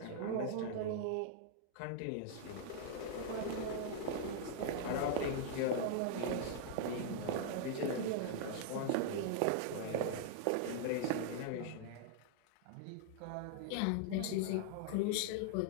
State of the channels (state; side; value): different; both; correlation -0.01